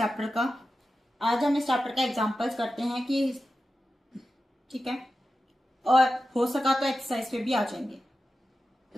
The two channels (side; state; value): both; normal; correlation 0.92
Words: का। आज हम इस चैप्टर का एग्जांपल्स करते हैं कि ठीक है, और हो सका तो एक्सरसाइज पे भी आ जाएंगे।